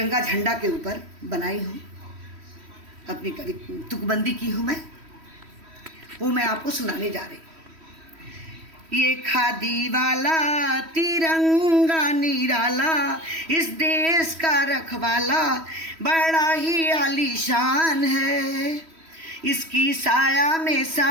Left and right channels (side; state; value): left; late; 3.1 ms